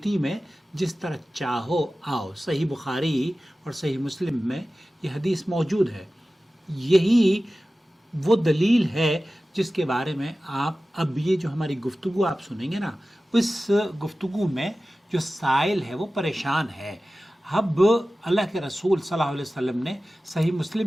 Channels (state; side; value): normal; both; correlation 0.96